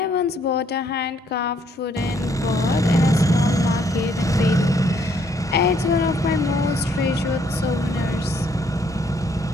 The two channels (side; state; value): both; normal; correlation 0.67